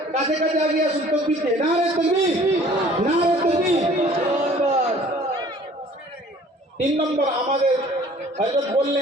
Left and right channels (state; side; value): normal; both; correlation 0.52